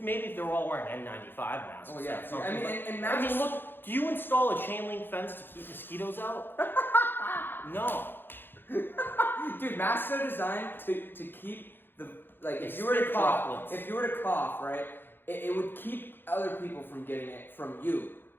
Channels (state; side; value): late; right; 0.099 ms